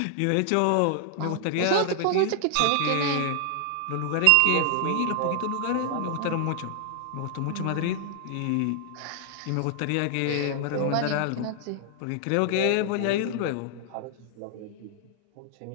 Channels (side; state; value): both; different; correlation 0.00